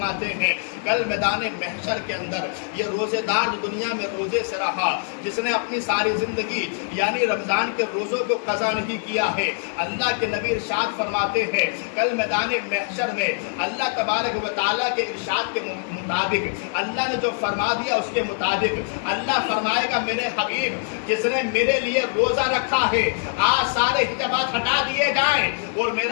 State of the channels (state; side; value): silent; right; 63 dB below the other